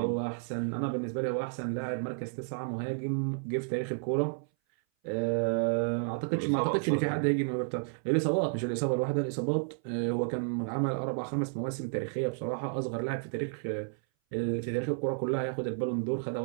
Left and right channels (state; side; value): silent; left; 57 dB below the other